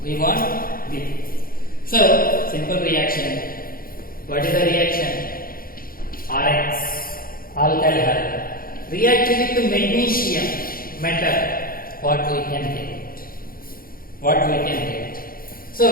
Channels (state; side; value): late; right; 0.42 ms